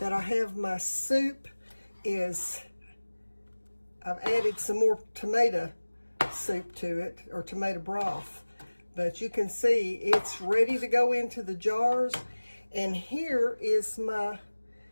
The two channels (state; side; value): inverted; both; correlation -1.00